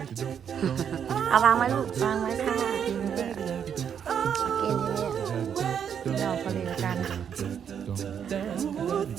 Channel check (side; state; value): left; quieter; 8.1 dB